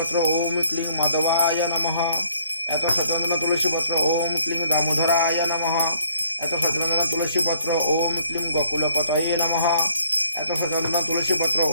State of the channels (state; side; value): inverted; both; correlation -0.64